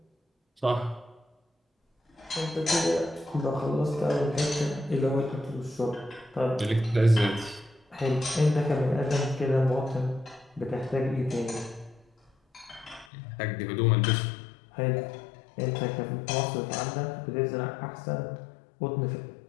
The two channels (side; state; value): right; drops out; at 13.1 s